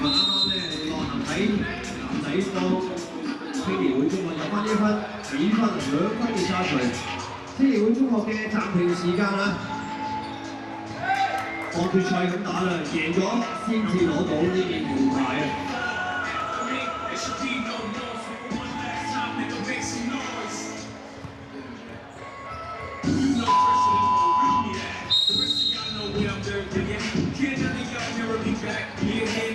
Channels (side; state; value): both; identical; correlation 1.00